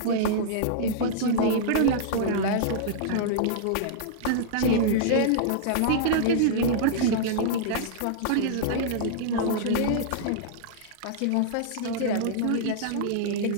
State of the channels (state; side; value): different; both; correlation -0.02